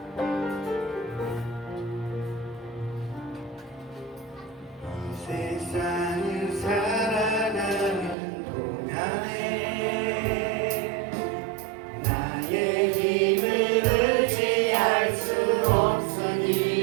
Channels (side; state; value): left; drops out; at 8.2 s